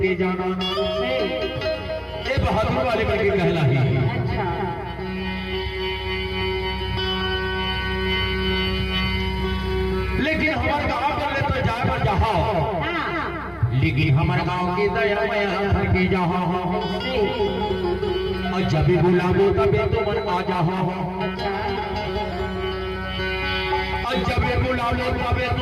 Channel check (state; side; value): identical; both; correlation 1.00